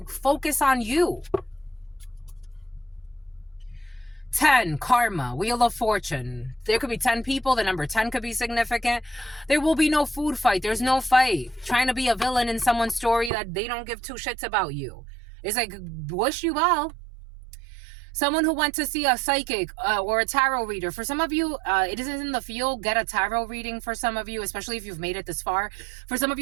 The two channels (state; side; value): drops out; left; at 13.3 s